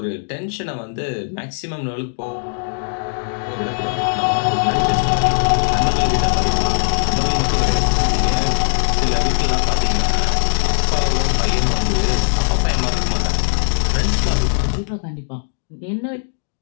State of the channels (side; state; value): right; silent; digital silence